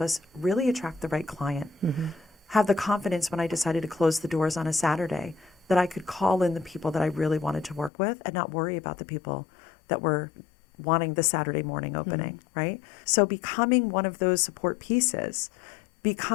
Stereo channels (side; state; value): right; drops out; at 7.9 s